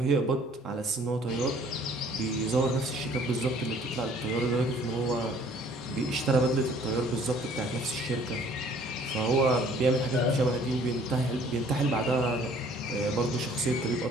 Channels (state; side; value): normal; both; correlation 0.56